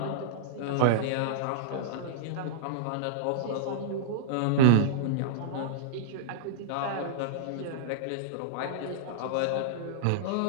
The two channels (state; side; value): different; both; correlation -0.02